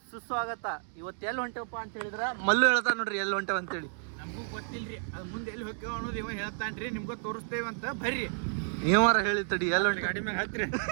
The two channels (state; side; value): silent; left; 57 dB below the other